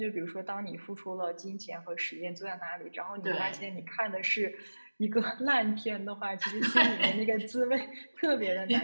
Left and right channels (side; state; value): both; inverted; correlation -1.00